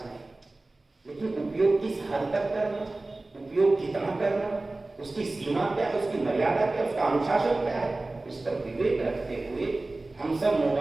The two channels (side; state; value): left; quieter; 3.0 dB